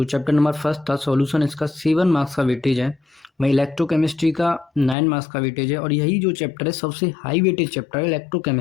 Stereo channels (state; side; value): drops out; right; at 5.0 s